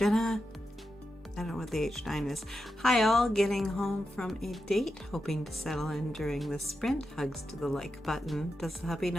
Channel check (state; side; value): normal; both; correlation 0.89